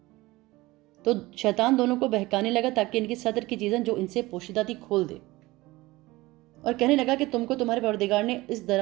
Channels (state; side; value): quieter; left; 19.9 dB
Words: تو شیطان دونوں کو بہکانے لگا تاکہ ان کی صدر کی چیزیں جو ان سے پوشیدہ تھی کھول دے، اور کہنے لگا کہ تم کو تمہارے پروردگار نے اس